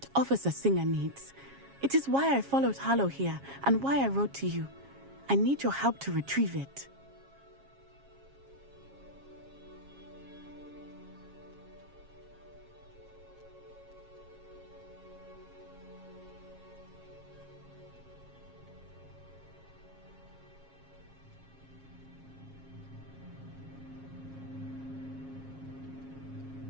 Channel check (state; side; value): late; left; 7.3 ms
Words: Officer Singer needs. It is why I followed Harlow here and why I wrote to you. I need your help to retrieve it.